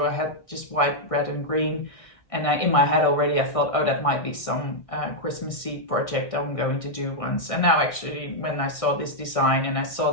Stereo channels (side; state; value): right; late; 1.6 ms